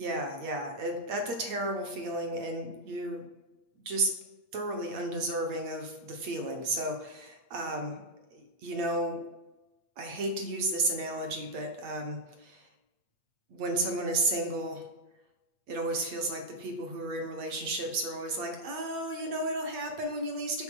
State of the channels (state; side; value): late; left; 8.5 ms